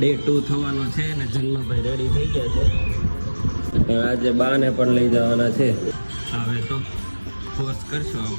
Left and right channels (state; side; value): inverted; both; correlation -1.00